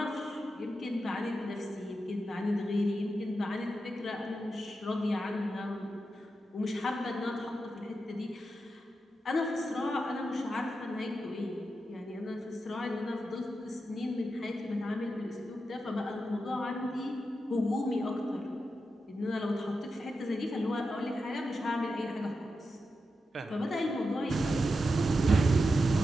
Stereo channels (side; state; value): both; normal; correlation 0.88